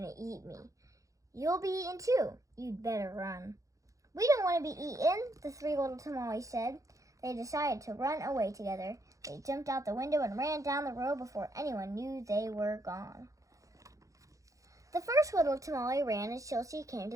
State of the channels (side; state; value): left; late; 0.16 ms